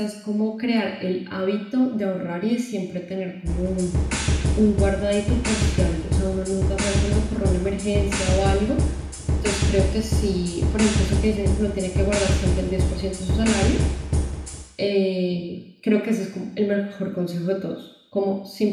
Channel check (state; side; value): identical; both; correlation 1.00